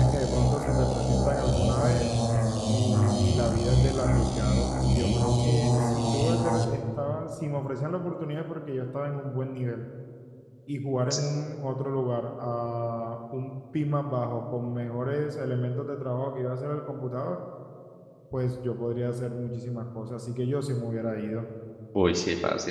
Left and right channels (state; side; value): identical; both; correlation 1.00